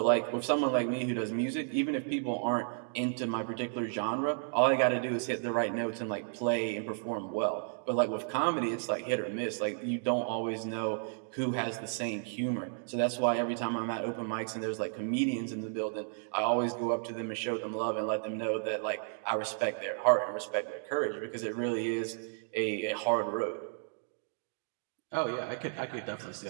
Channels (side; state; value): left; silent; digital silence